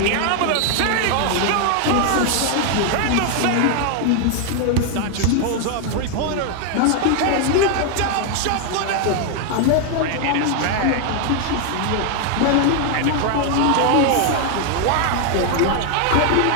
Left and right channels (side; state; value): both; different; correlation 0.00